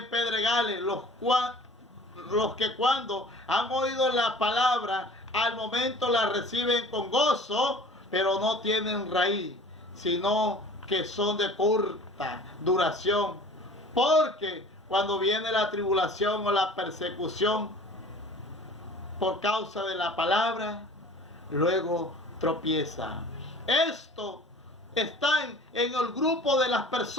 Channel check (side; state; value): both; normal; correlation 0.45